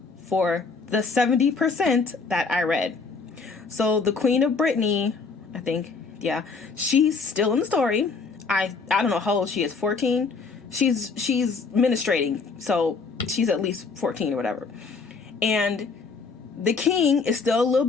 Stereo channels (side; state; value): right; quieter; 4.6 dB